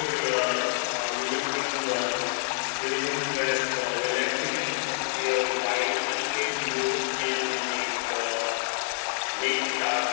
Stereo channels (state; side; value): silent; right; digital silence